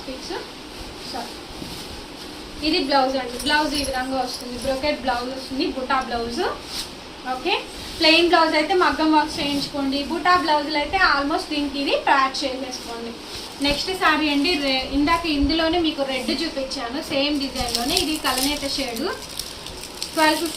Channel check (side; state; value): both; identical; correlation 1.00